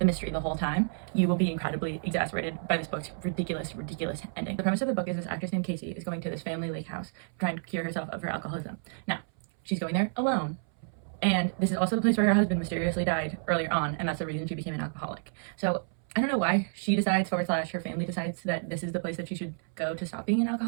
mystery the whole time, you will be incredibly exasperated by this book's ridiculous ending. The premise of the book is this actress named Casey is going to this family lake house trying to cure herself of her alcoholism. Now, she's going there alone. And this is also the place where her husband mysteriously died earlier on, and that's the reason she became an alcoholic. So I don't know why she decides / her family decides that this is the place that she should go to stop being an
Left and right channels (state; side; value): silent; left; 58 dB below the other